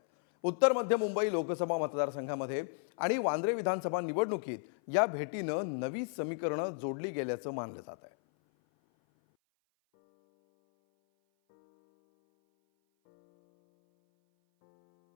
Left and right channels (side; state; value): right; silent; 56 dB below the other